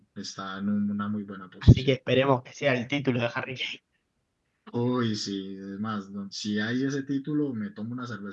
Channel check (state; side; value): identical; both; correlation 1.00